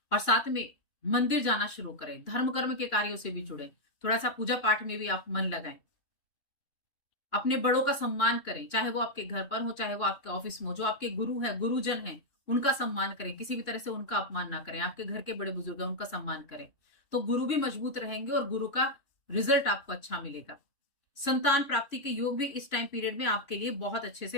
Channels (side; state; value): right; late; 2.9 ms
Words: और साथ में मंदिर जाना शुरू करें, धर्म कर्म के कार्यों से भी जुड़े, थोड़ा सा पूजा पाठ में भी आप मन लगाएं। अपने बड़ों का सम्मान करें, चाहे वो आपके घर पर हो चाहे वो आपके ऑफिस में हो। जो आपके गुरु है, गुरुजन है, उनका सम्मान करें, किसी भी तरह से उनका अपमान ना करें। आपके घर के बड़े बुजुर्ग हैं उनका सम्मान करें, तो गुरु भी मजबूत रहेंगे और गुरु का रिजल्ट आपको अच्छा मिलेगा। संतान प्राप्ति के योग भी इस टाइम पीरियड में आपके लिए बहुत अच्छे